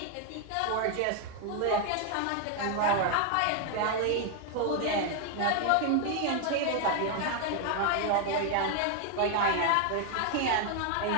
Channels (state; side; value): different; both; correlation 0.00